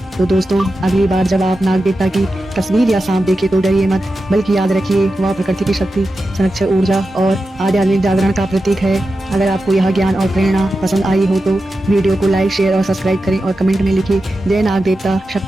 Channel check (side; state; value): both; normal; correlation 0.91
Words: तो दोस्तों, अगली बार जब आप नाग देवता की तस्वीर या सांप देखें तो डरिए मत, बल्कि याद रखिए वह प्रकृति की शक्ति, संरक्षक ऊर्जा और आध्यात्मिक जागरण का प्रतीक है। अगर आपको यह ज्ञान और प्रेरणा पसंद आई हो तो वीडियो को लाइक, शेयर और सब्सक्राइब करें और कमेंट में लिखिए, जय नाग देवता,